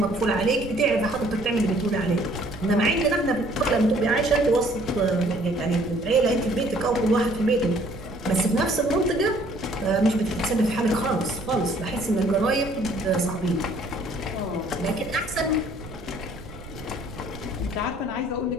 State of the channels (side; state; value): right; noise; rumble, 16 dB below the sound